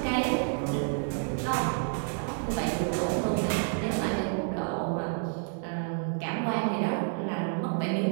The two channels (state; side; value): silent; left; 58 dB below the other